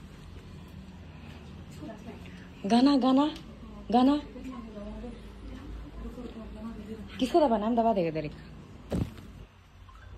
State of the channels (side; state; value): both; identical; correlation 1.00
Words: गाना गाना गाना किसको दबाना? हम दबा देगा तेरे